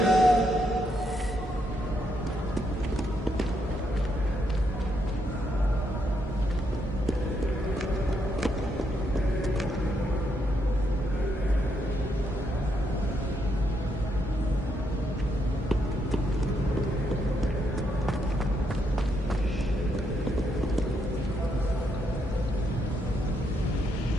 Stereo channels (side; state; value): both; normal; correlation 0.77